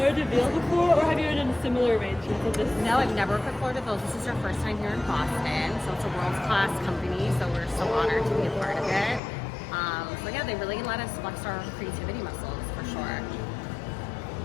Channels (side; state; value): right; drops out; at 9.2 s